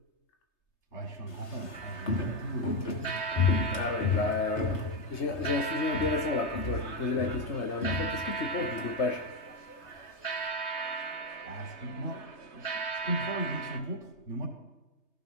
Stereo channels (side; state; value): right; late; 3.3 ms